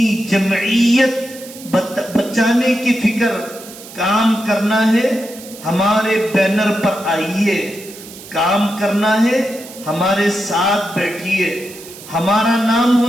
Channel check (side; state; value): right; noise; hiss, 17 dB below the sound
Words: جمعیت بچانے کی فکر، کام کرنا ہے ہمارے بینر پر آئیے، کام کرنا ہے ہمارے ساتھ بیٹھیے، ہمارا نام